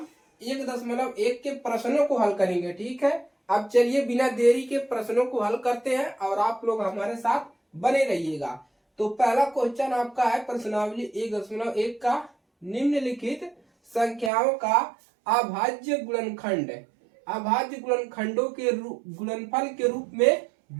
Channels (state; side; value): drops out; left; at 14.3 s